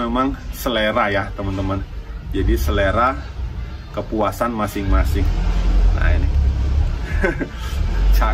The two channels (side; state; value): both; identical; correlation 1.00